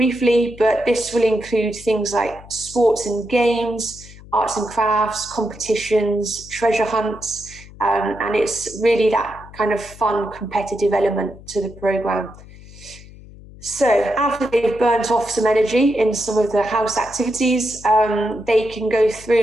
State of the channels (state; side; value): noise; left; hum, 19 dB below the sound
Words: but this will include things like sports and games, arts and crafts, competitions, treasure hunts, and it's really that kind of fun, competitive element to the programme. So after they've burnt off some energy in some of the house activities, they can go